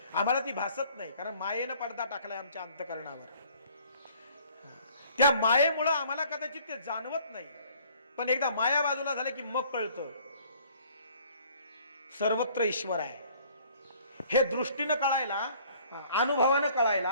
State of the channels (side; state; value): both; inverted; correlation -0.57